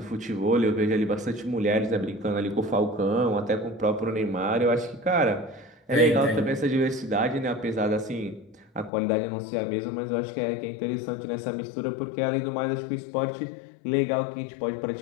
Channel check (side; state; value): right; drops out; at 8.9 s